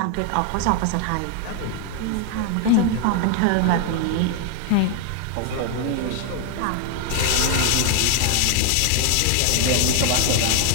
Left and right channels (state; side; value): different; both; correlation 0.00